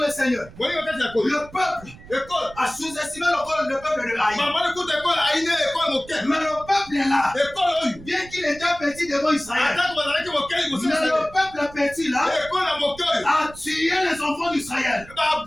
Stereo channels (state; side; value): noise; right; rumble, 19 dB below the sound